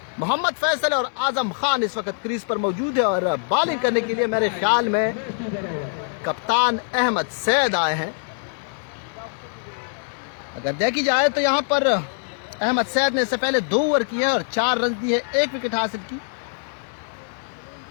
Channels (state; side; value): silent; right; digital silence